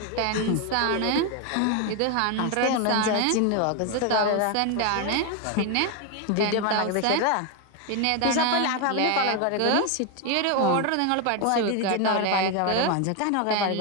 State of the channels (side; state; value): both; different; correlation 0.01